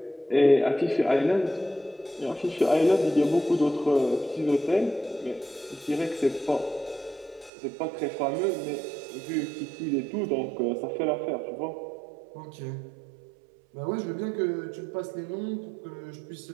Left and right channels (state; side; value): drops out; left; at 7.5 s